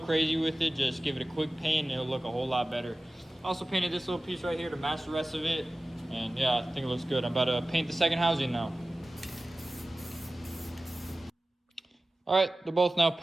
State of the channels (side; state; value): both; normal; correlation 0.96